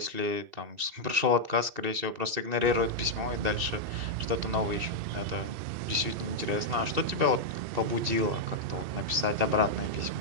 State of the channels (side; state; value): left; late; 2.7 ms